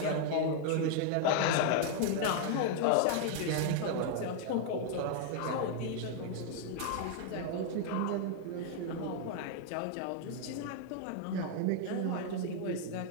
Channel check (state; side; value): different; both; correlation 0.00